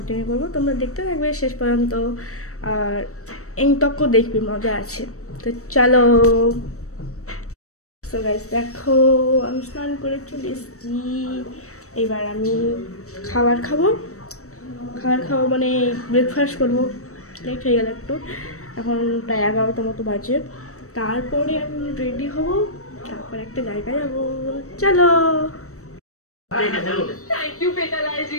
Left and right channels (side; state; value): right; late; 0.65 ms